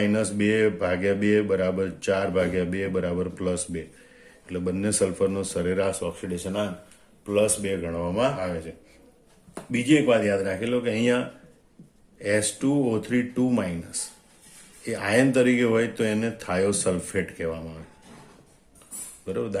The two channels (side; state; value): both; identical; correlation 1.00